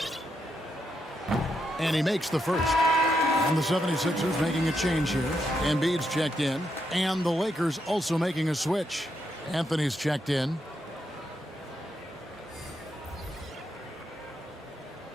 And he makes the first. And the 76ers making a change here. Embiid's checked in. And the Lakers also making a switch. Anthony's checked in.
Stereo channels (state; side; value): normal; both; correlation 0.81